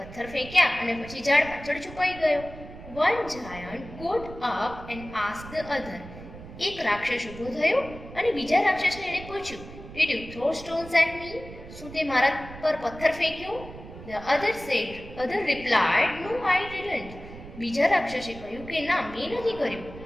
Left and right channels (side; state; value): right; noise; rumble, 15 dB below the sound